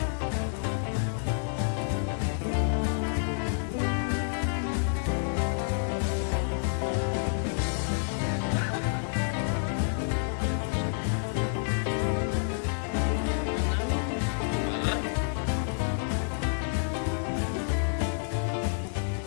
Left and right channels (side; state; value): right; silent; 59 dB below the other